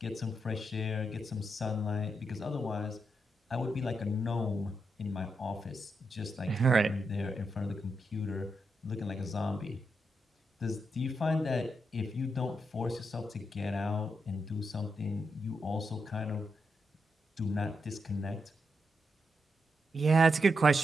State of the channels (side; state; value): both; normal; correlation 0.83